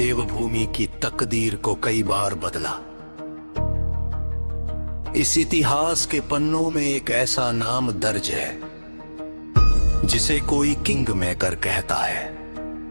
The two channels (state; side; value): inverted; both; correlation -1.00